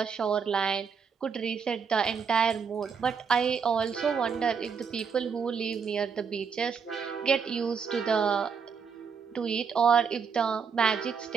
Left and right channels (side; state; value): left; quieter; 6.2 dB